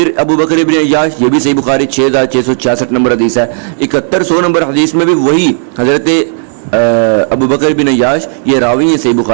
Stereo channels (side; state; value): left; silent; digital silence